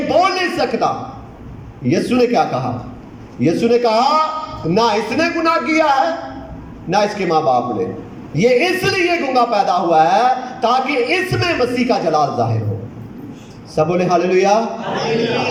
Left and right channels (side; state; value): both; identical; correlation 1.00